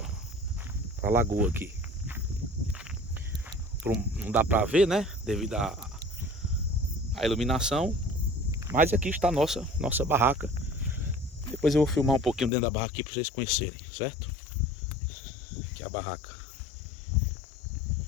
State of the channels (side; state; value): right; drops out; at 12.5 s